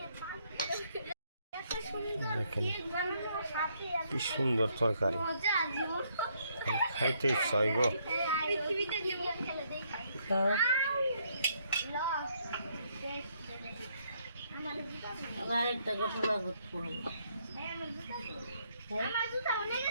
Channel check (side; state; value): both; inverted; correlation -0.71